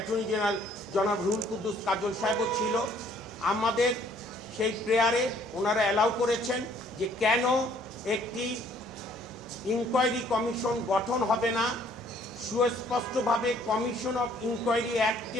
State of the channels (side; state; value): both; normal; correlation 0.61